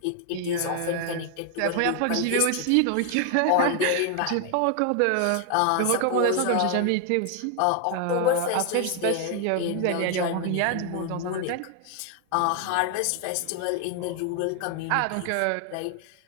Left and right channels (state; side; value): different; both; correlation 0.00